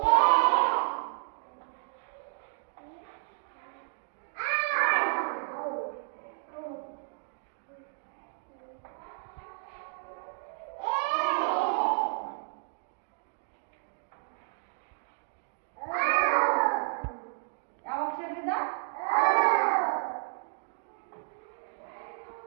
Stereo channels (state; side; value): silent; left; digital silence